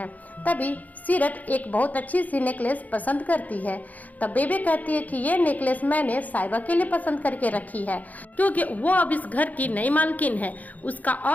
तभी सीरत एक बहुत अच्छी सी नेकलेस पसंद करती है। तब बेबे कहती है कि ये नेकलेस मैंने साहिबा के लिए पसंद करके रखी है क्योंकि वो अब इस घर की नई मालकिन है, उसका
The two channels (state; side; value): late; right; 0.078 ms